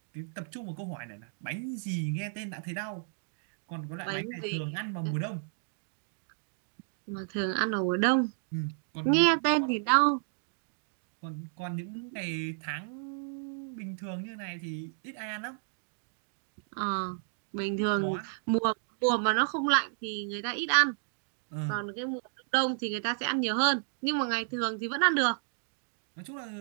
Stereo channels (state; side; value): silent; left; digital silence